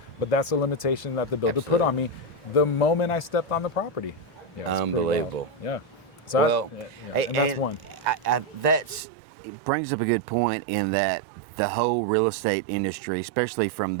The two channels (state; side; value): drops out; left; at 9.0 s